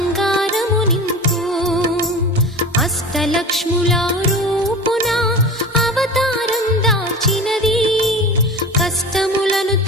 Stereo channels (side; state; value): both; normal; correlation 0.32